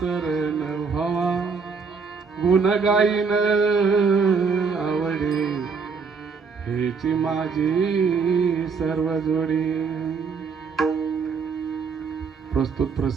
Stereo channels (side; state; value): left; quieter; 5.3 dB